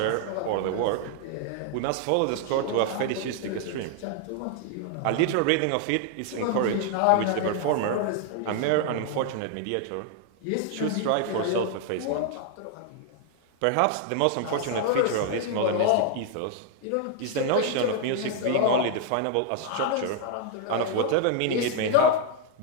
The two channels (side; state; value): both; different; correlation 0.00